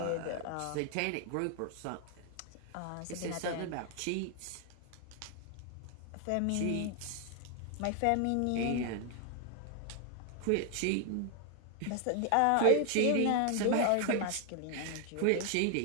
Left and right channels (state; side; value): different; both; correlation 0.00